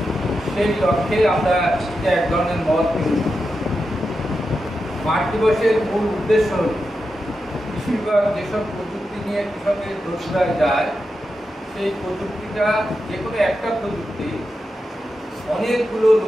সেই লক্ষ্যে আমরা এক ধরনের মত মাঠ দিবসের মূল উদ্দেশ্য হল কৃষি বিভাগ যেসব প্রযুক্তি নিয়ে কৃষকের দোষরায় যায়, সেই প্রযুক্তিটা যে কোনো একটা প্রযুক্তি অনেকগুলো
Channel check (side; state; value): both; normal; correlation 0.89